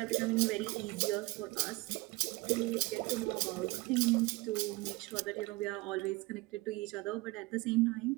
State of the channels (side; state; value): left; quieter; 22.5 dB